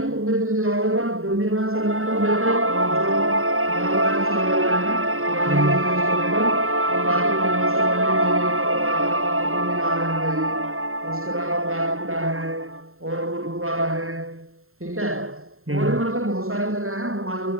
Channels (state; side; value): late; left; 0.62 ms